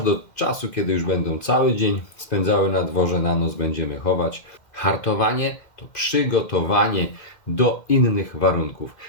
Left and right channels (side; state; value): right; late; 2.1 ms